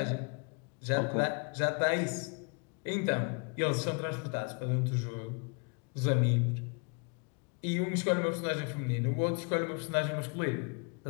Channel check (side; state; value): right; quieter; 34.3 dB